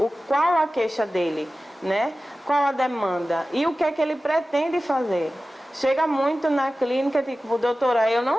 Qual a queixa dele, né? Qual a demanda? E o que é que ele pretende fazer? Chega muito na clínica, tipo, doutora, eu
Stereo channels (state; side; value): normal; both; correlation 0.95